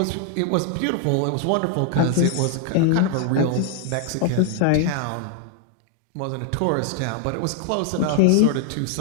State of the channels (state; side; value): different; both; correlation 0.00